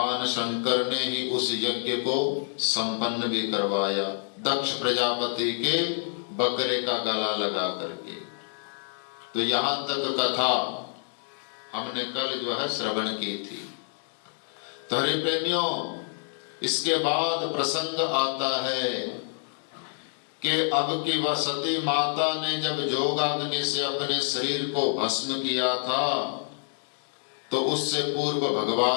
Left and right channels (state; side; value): silent; right; digital silence